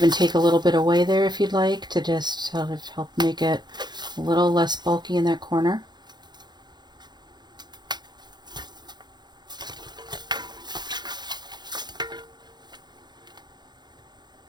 take a little bit away there if you'd like to just sort of help make it a little less bulky in that corner.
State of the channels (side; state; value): left; late; 0.21 ms